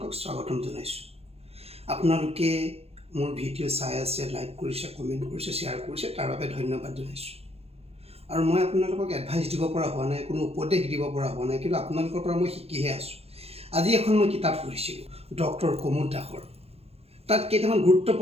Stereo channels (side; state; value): left; late; 0.29 ms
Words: স্বাগতম জনাইছোঁ। আপোনালোকে মোৰ ভিডিঅ' চাই আছে, লাইক কৰিছে, কমেণ্ট কৰিছে, শ্বেয়াৰ কৰিছে, তাৰ বাবে ধন্যবাদ জনাইছোঁ। আৰু মই আপোনালোকক এডভাইচ দিব পৰা হোৱা নাই, কোনো উপদেশ দিব পৰা হোৱা নাই, কিন্তু আপোনালোকৰ পৰা মই শিকিহে আছোঁ। আজি এখন মই কিতাপ পঢ়িছিলোঁ ডক্টৰ কুমুদ দাসৰ। তাত কেইটামান